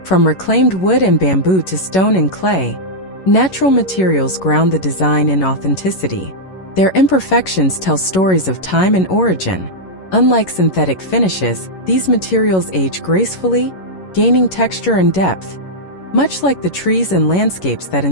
From reclaimed wood and bamboo to stone and clay, natural materials ground the design in authenticity. Their imperfections tell stories of time and origin. Unlike synthetic finishes, these materials age gracefully, gaining texture and depth, much like the trees and landscapes that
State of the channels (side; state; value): right; late; 11 ms